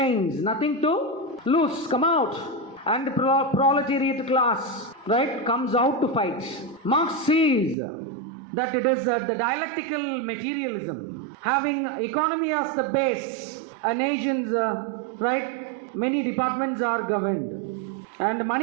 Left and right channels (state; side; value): drops out; left; at 7.8 s